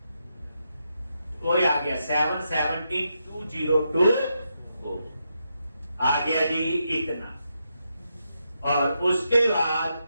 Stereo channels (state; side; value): inverted; both; correlation -0.83